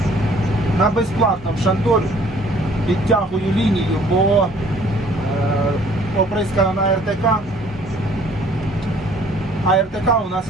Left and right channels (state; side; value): normal; both; correlation 0.57